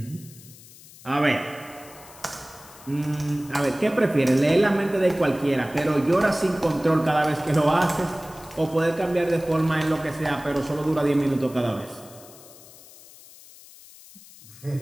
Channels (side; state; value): left; noise; hiss, 21 dB below the sound